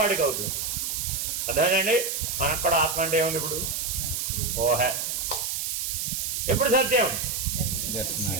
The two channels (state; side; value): noise; right; hiss, 2 dB below the sound